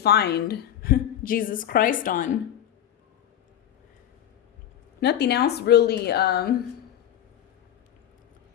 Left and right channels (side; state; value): right; quieter; 10.8 dB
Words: Jesus Christ on. Nothing else really had